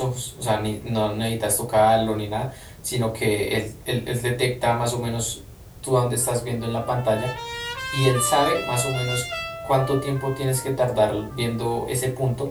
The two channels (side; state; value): both; identical; correlation 1.00